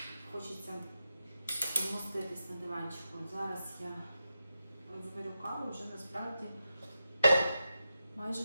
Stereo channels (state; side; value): inverted; both; correlation -0.90